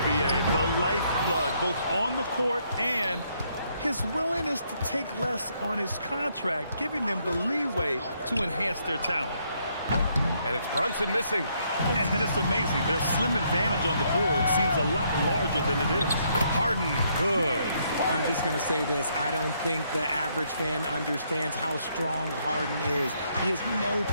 B.A., the lifeblood, both on the court and his willingness to take less on his contract, giving them the leeway to enhance their talent. And it's Brunson missing. And it's amazing. Their slim advantage on the board seems a lot larger than it is. Harden, good. I'm just going to say this. I don't think the average fan understands how strong Harden is. He has no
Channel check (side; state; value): both; inverted; correlation -0.72